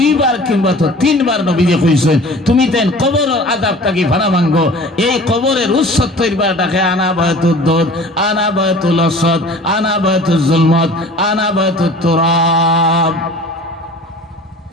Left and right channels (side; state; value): both; normal; correlation 0.44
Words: কিংবা তো তিনবার নবীজি কইছেন তুমি দেন কবরের আযাব তাকি ফানা ভাঙ্গো এই কবরের 70 বার ডাকে আনা বায়তুদ দুদ আনা বায়তুল আসদ আনা বায়তুল জুলমত আনা বায়তুত তুরাব